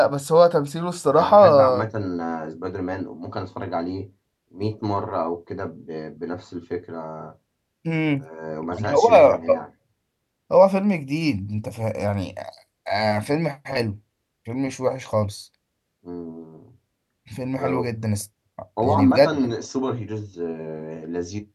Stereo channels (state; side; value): identical; both; correlation 1.00